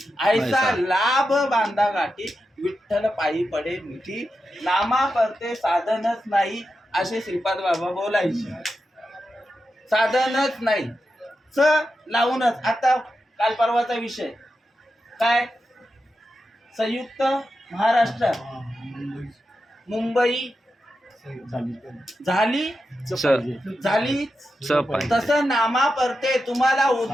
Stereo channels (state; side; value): normal; both; correlation 0.89